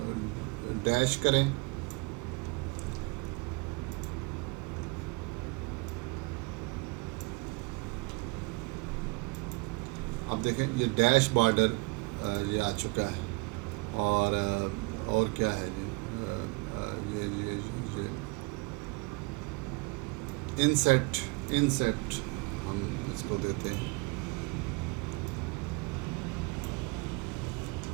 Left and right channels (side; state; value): left; quieter; 26.2 dB